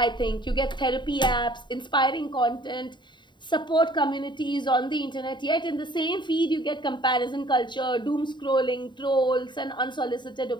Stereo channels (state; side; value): late; right; 0.22 ms